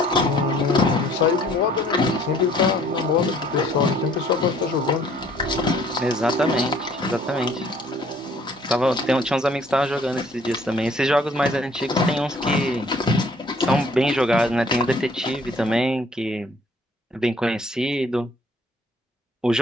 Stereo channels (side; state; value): both; normal; correlation 0.59